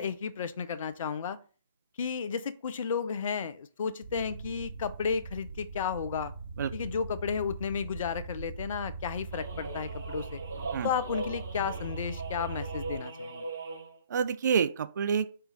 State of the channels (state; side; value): inverted; both; correlation -0.56